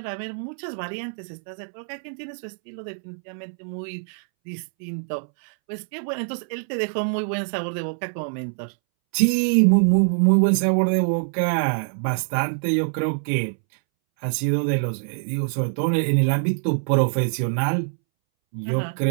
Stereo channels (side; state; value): left; silent; 62 dB below the other